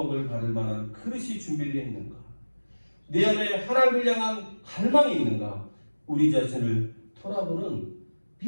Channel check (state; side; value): inverted; both; correlation -1.00